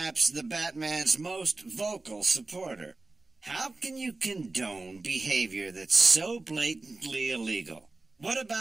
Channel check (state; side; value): quieter; left; 3.4 dB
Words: the Batman's most vocal supporter. How can you condone behavior that's so blatantly illegal? What